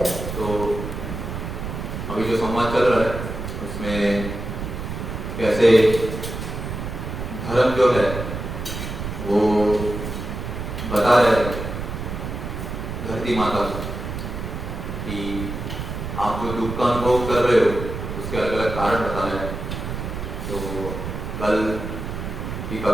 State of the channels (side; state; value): right; noise; rumble, 6 dB below the sound